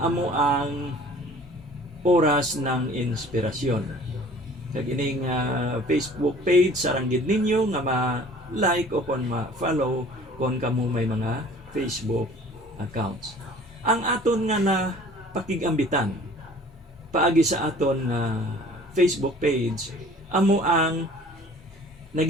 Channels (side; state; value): both; normal; correlation 0.49